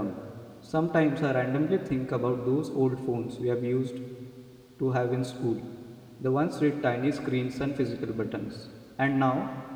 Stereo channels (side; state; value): both; identical; correlation 1.00